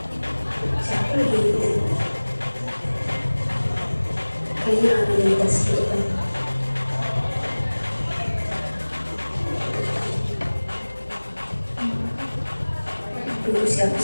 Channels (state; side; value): inverted; both; correlation -1.00